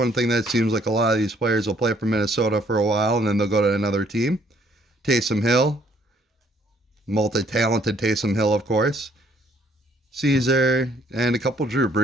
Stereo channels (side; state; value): both; normal; correlation 0.64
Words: thing that seems like a lot of these players will play for Minnesota for a while, and then they'll go to another team. Taysom Hill. Multi-talented Taysom Hill, of course. Caesar. And a couple Drew